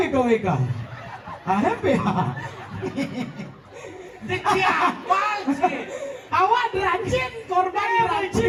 HMPH. Siapa sih? Awak derajin, korban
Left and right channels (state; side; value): identical; both; correlation 1.00